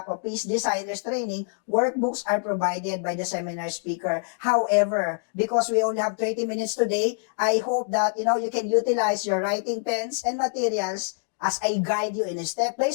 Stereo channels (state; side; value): silent; right; digital silence